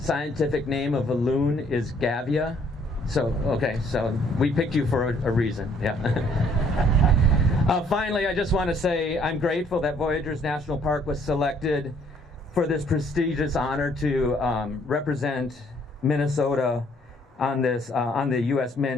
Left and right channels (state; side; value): normal; both; correlation 0.64